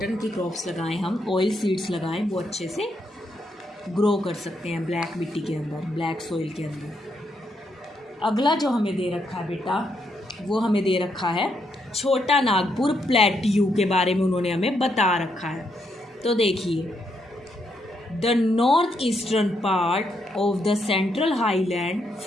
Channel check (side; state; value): both; normal; correlation 0.78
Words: की क्रॉप्स लगाएं हम, ऑयल सीड्स लगाएं, वो अच्छे से ग्रो कर सकते हैं ब्लैक मिट्टी के अंदर, ब्लैक सॉइल के अंदर। अगला जो हमें दे रखा है बेटा, वो हमें दे रखा है छोटा नागपुर प्लेट्यू के बारे में उन्होंने हमें बता रखा है। तो देखिए, the north eastern part of the central highland